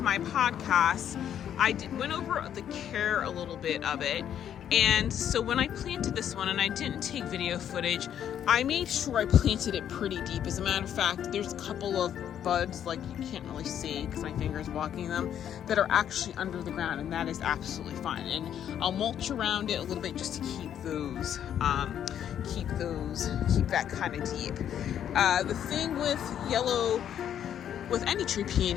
my podcast, went over the care a little bit of it. And so when I planted this one, and I didn't take video footage, I made sure I planted it pretty deep. As a matter of fact, there's a couple of buds, like you can't really see because my finger's blocking them, that are actually under the ground, and that is absolutely fine. And I'll mulch around it a little bit just to keep that kind of deep. The thing with any tree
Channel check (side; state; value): right; quieter; 9.7 dB